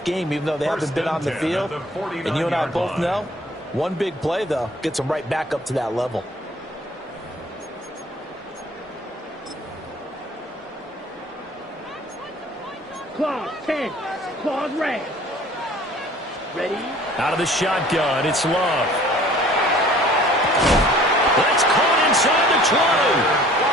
game, even though they haven't been on the field? And you and I both know, one big play, though, gets them right back up to that level. Claws 10. Claws red. Ready? Out of the shotgun, it's Love. That's caught inside the 20.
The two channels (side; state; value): both; normal; correlation 0.51